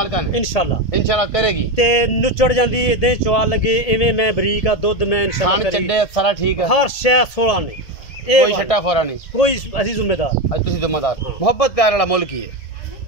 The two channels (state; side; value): late; right; 1.8 ms